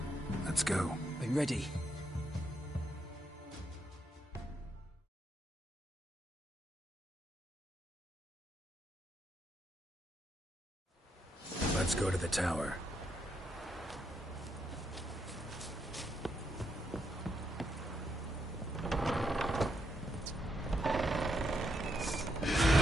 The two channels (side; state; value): both; normal; correlation 0.79